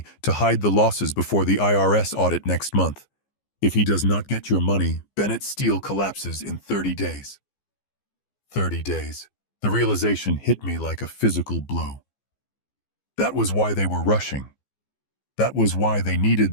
to hide the losses before the IRS audit next month. If he does not get your money, Bennett Steel collapses in 30 days. 30 days. The realization hit me like a physical blow. That was why they were rushing. That was why they needed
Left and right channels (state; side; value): late; right; 15 ms